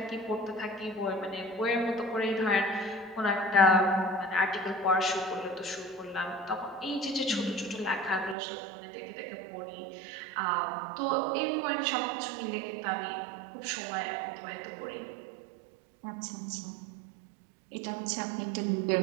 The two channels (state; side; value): drops out; left; at 8.3 s